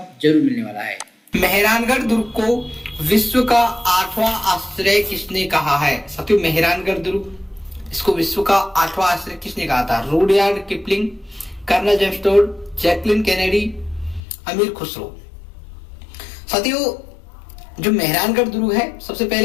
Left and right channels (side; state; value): right; drops out; at 14.2 s